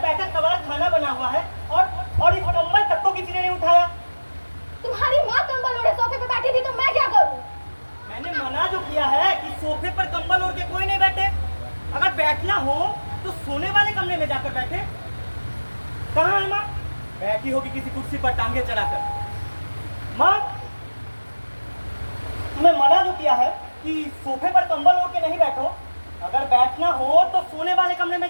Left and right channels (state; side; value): inverted; both; correlation -1.00